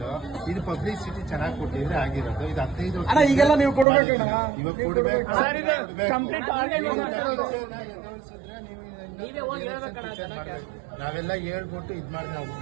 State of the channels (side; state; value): left; drops out; at 3.9 s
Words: ಇದು ಪಬ್ಲಿಸಿಟಿ ಚೆನ್ನಾಗಿ ಕೊಟ್ಟಿದ್ರೆ ಆಗಿರೋದು. ಇದು 15 ವರ್ಷ. ಈಗೆಲ್ಲ ನೀವು ಕೊಡ್ಬೇಕಣ್ಣ. ಇವಾಗ ಕೊಡ್ಬೇಕು. ನಾವೆಲ್ಲ ಹೇಳ್ಬಿಟ್ಟು ಇದ್ ಮಾಡಿ ನಾವು